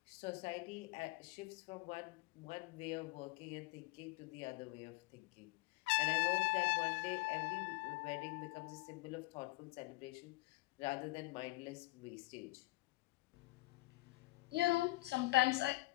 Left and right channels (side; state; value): right; quieter; 21.1 dB